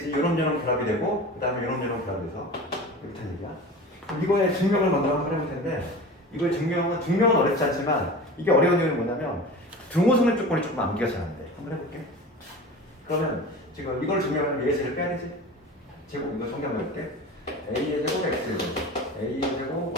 요놈저놈 결합이 되고 그 다음에 요놈저놈 결합이 돼서 이렇게 된 얘기야. 그럼 이거의 증명을 먼저 한번 해볼 텐데 이거의 증명은 어렵지 않지만 이게 어려운 이유는 뭐냐면 등호성립 조건이 조금 암기가 잘 안 돼. 한번 해볼게. 그러면 지금 이걸 증명하면 A의 제를 빼야 되지. 제곱 이거 정리한번 해볼게. A의 제곱 X의 제곱 A의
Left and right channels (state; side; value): normal; both; correlation 0.34